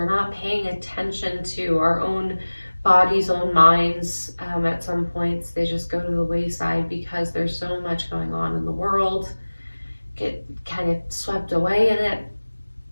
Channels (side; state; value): both; inverted; correlation -1.00